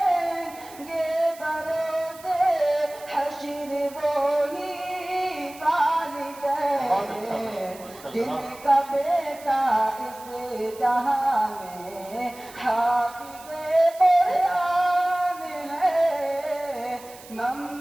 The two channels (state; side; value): noise; right; hiss, 20 dB below the sound